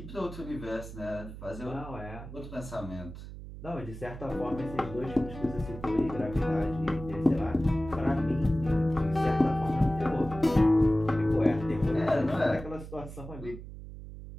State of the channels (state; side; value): noise; right; hum, 12 dB below the sound